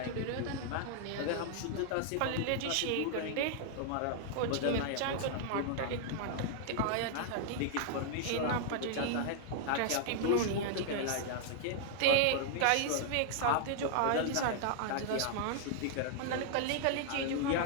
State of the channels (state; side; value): different; both; correlation -0.01